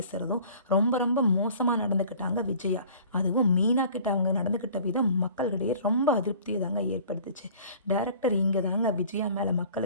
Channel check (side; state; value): both; inverted; correlation -0.48